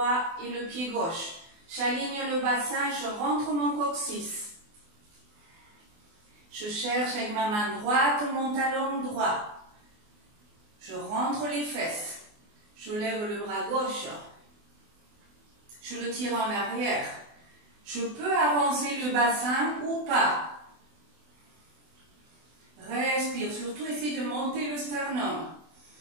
et le pied gauche. J'aligne le bassin, je rentre mon coccyx. Je cherche avec ma main droite mon talon droit. Je rentre les fesses. Je lève le bras gauche. Je le tire en arrière. Je peux avancer le bassin ou pas. Respire, surtout essaye de monter le sternum.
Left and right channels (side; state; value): left; late; 24 ms